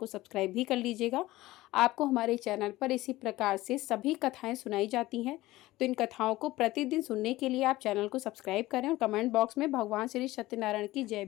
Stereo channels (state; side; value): quieter; right; 17.7 dB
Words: सब्सक्राइब भी कर लीजिएगा। आपको हमारे चैनल पर इसी प्रकार से सभी कथाएं सुनाई जाती हैं, तो इन कथाओं को प्रतिदिन सुनने के लिए आप चैनल को सब्सक्राइब करें और कमेंट बॉक्स में भगवान श्री सत्यनारायण की जय